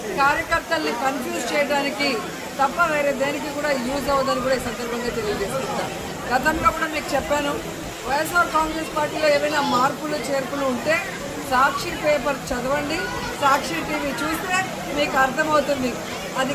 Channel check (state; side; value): identical; both; correlation 1.00